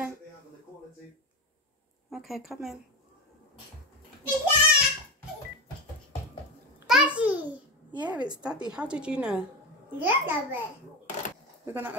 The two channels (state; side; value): normal; both; correlation 0.17